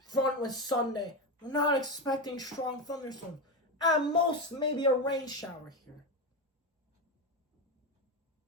front with Sunday, we're not expecting strong thunderstorms. At most, maybe a rain shower here.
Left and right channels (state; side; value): normal; both; correlation 0.15